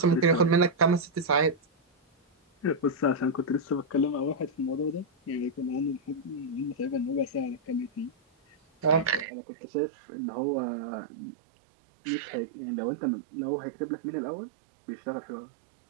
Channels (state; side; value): drops out; left; at 9.2 s